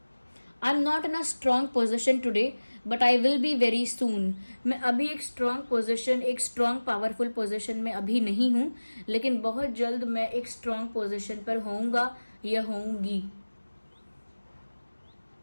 I am not in a strong position today but I will be very soon. मैं अभी एक स्ट्रॉन्ग पोजिशन, एक स्ट्रॉन्ग पावरफुल पोजिशन में अभी नहीं हूँ, लेकिन बहुत जल्द मैं एक स्ट्रॉन्ग पोजिशन पर होऊंगा या होऊंगी।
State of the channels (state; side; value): inverted; both; correlation -1.00